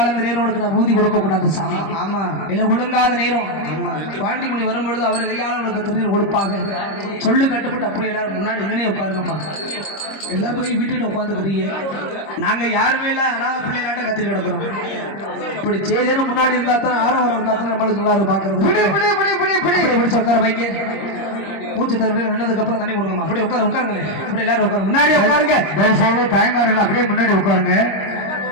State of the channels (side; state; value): right; late; 26 ms